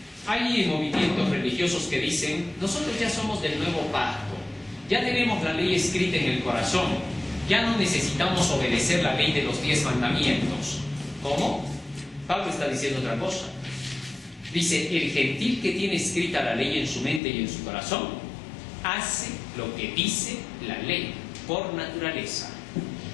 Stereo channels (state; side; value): drops out; right; at 17.2 s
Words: Hay movimientos religiosos que dicen, nosotros ya somos del nuevo pacto, ya tenemos la ley escrita en el corazón, ya no necesitamos obedecer la ley de los 10 mandamientos. ¿Cómo? Pablo está diciendo otra cosa. Dice, el gentil que tiene escrita la ley en su mente y en su corazón, hace lo que dice la ley, por naturaleza.